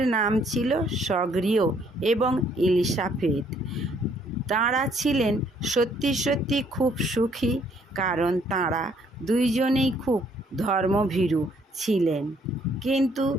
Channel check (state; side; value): normal; both; correlation 0.66